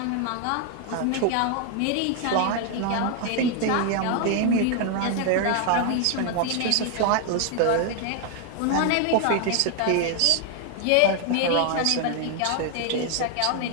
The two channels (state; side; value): different; both; correlation 0.00